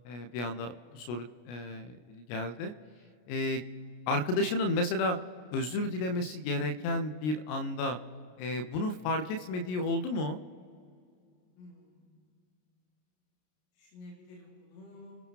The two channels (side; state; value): right; late; 33 ms